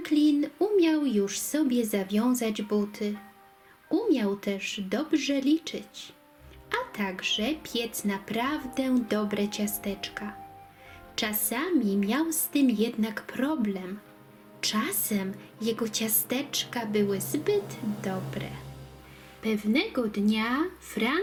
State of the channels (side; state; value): both; identical; correlation 1.00